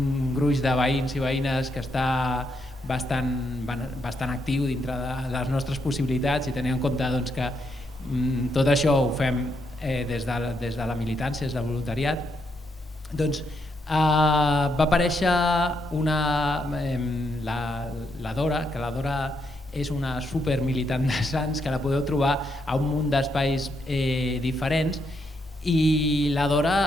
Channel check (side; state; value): both; normal; correlation 0.79